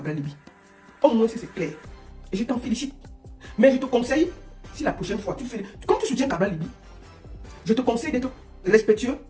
Libi. Au moins, c'est clair. Et je t'en félicite. Mais je te conseille, si la prochaine fois, comme tu soutiens Cabral Libi, je te conseille d'être respectueux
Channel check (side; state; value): both; identical; correlation 1.00